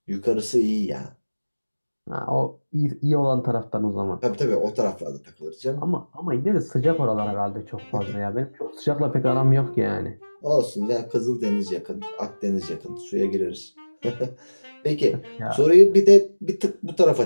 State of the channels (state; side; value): inverted; both; correlation -1.00